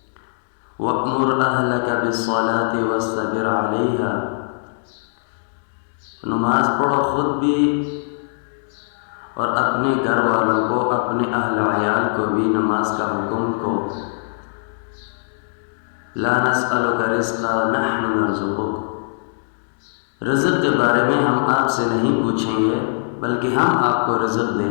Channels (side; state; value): right; silent; digital silence